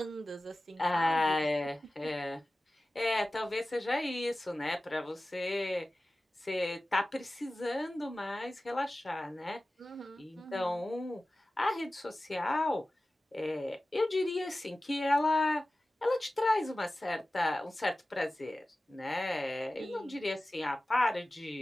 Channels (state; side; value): normal; both; correlation 0.96